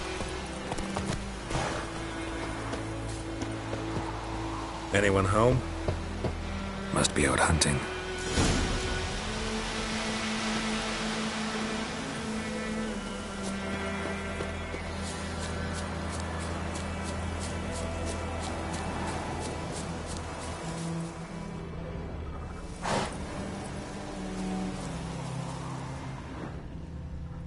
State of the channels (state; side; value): identical; both; correlation 1.00